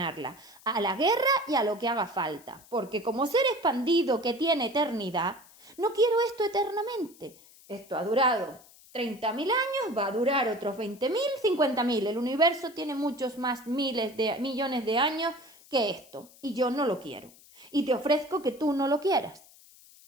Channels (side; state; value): left; noise; hiss, 24 dB below the sound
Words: a la guerra y a lo que haga falta. Porque como ser expandido que tiene eternidad, no quiero esto eternamente. Esto ha durado 30.000 años, va a durar otros 20.000, 50.000. El universo tiene muchos más millones de años que esto y yo no lo quiero. Y te ofrezco que tú no lo quieras,